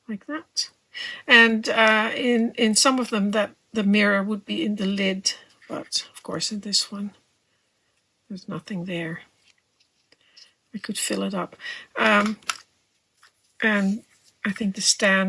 like that. And in some of them that the mirror would be in the lid, but of course in this one there's nothing there. I could fill it up. And I think the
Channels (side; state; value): both; identical; correlation 1.00